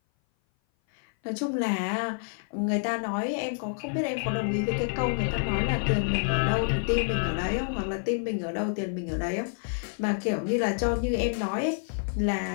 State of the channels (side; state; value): right; silent; 57 dB below the other